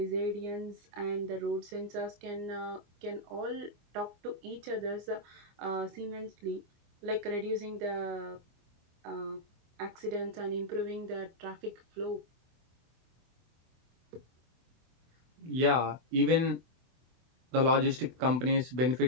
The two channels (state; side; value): late; left; 24 ms